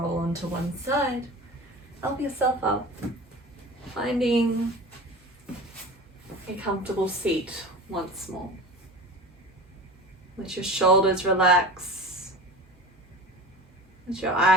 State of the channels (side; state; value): right; noise; hum, 30 dB below the sound